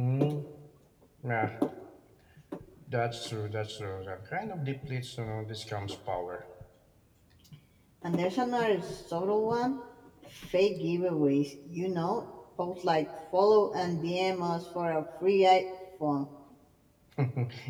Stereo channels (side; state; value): both; identical; correlation 1.00